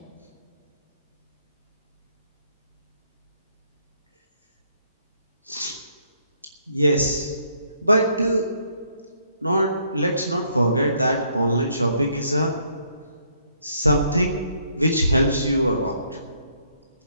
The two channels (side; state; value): both; inverted; correlation -0.68